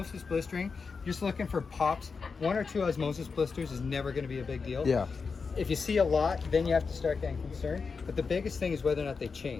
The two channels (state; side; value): quieter; right; 5.0 dB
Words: blistering, just looking for pops. 1 or 2 osmosis blisters is never going to be a big deal. Yeah. If you see a lot, then you have to start getting concerned. But the biggest thing is whether or not they